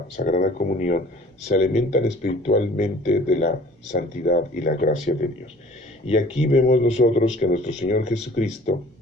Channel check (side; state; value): both; normal; correlation 0.50